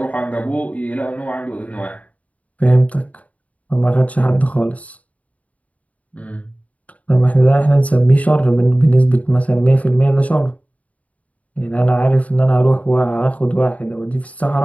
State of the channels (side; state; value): right; late; 0.069 ms